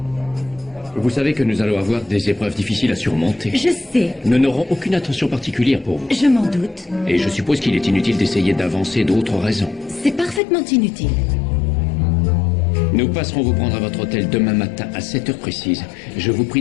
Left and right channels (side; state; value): right; drops out; at 10.4 s